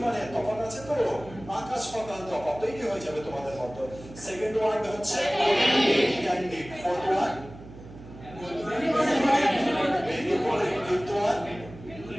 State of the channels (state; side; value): noise; right; hum, 16 dB below the sound